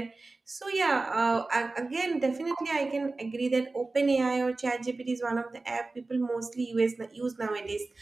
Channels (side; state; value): left; quieter; 3.4 dB